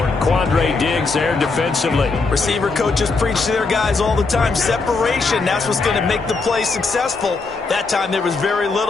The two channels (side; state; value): right; quieter; 4.1 dB